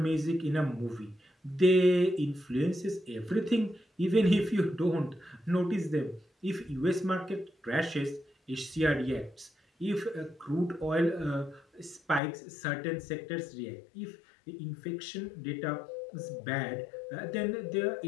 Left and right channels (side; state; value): right; drops out; at 12.2 s